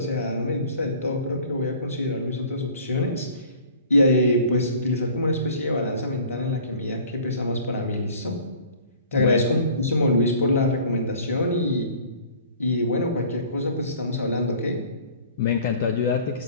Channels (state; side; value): inverted; both; correlation -0.48